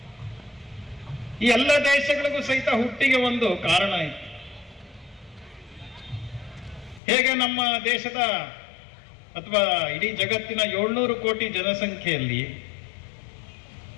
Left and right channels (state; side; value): drops out; right; at 7.0 s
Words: ಈ ಎಲ್ಲ ದೇಶಗಳಿಗೂ ಸಹಿತ ಹುಟ್ಟಿಗೆ ಒಂದು ಕಾರಣ ಇತ್ತು. ಹೇಗೆ ನಮ್ಮ ದೇಶದ ಅಥವಾ ಇಡೀ ಜಗತ್ತಿನ 700 ಕೋಟಿ ಜನಸಂಖ್ಯೆಯಲ್ಲಿ